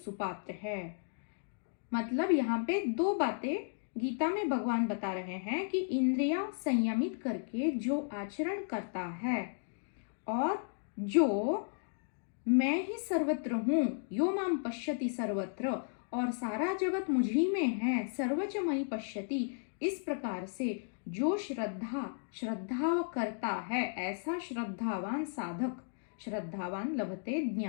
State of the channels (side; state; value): right; silent; digital silence